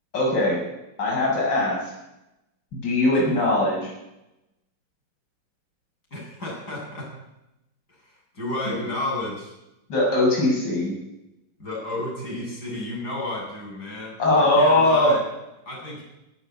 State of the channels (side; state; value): right; late; 4.8 ms